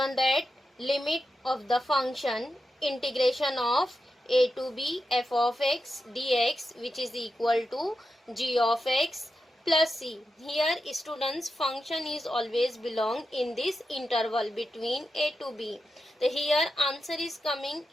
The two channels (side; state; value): both; normal; correlation 0.89